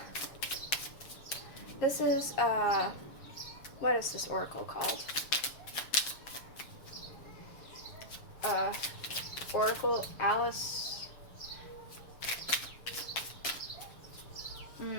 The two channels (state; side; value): late; right; 7.1 ms